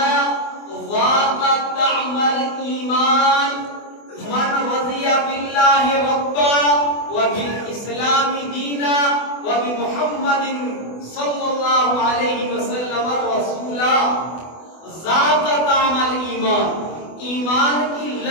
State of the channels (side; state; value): right; late; 24 ms